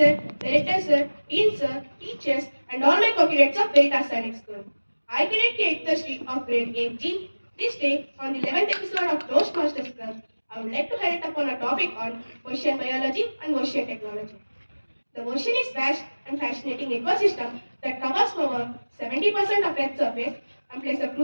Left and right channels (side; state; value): both; inverted; correlation -1.00